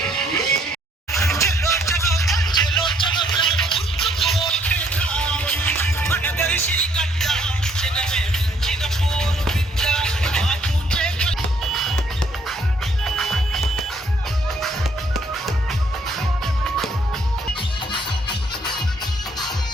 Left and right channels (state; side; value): normal; both; correlation 0.66